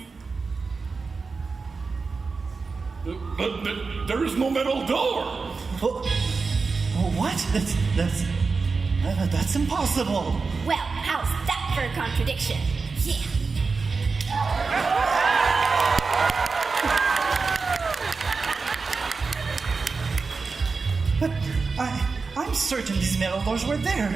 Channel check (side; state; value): left; quieter; 4.5 dB